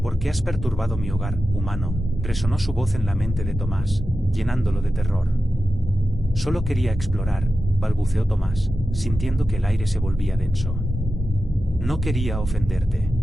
«¿Por qué has perturbado mi hogar, humano?», resonó su voz en la mente de Tomás, llenándolo de terror. «Solo quería explorar», balbuceó Tomás, sintiendo que el aire se volvía denso. No quería ofenderte.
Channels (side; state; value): both; normal; correlation 0.92